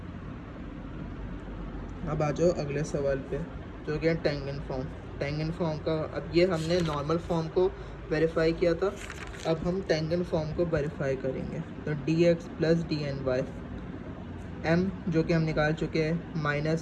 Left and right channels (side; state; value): both; identical; correlation 1.00